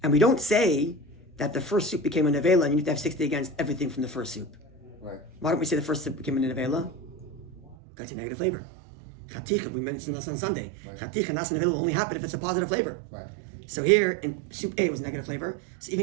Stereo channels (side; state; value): left; drops out; at 7.8 s